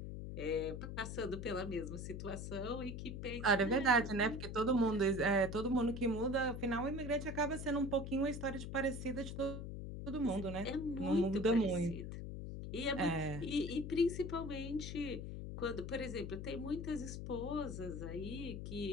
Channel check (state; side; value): noise; left; hum, 6 dB below the sound